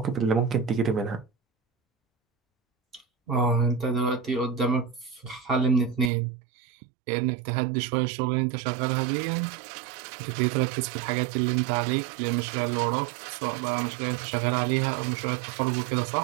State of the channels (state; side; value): drops out; left; at 6.1 s